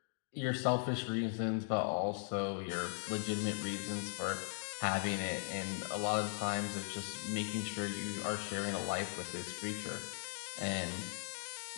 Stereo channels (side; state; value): right; silent; digital silence